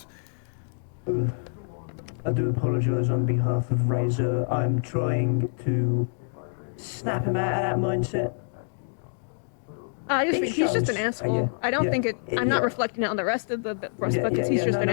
I do apologise on behalf of Razor. I'm trying to snap him out of that mindset. He's just an asshole. I don't think it. I'm not reflecting it on the rest of the rest because he's just an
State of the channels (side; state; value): right; silent; digital silence